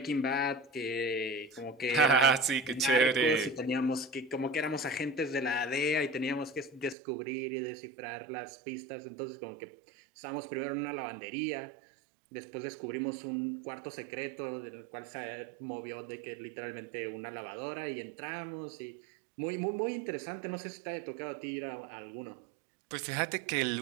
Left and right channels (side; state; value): left; drops out; at 7.0 s